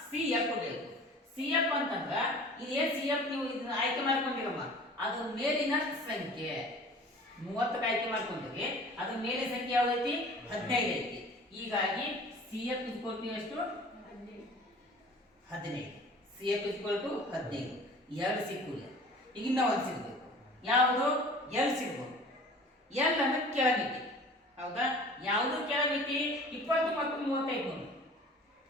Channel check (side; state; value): both; normal; correlation 0.45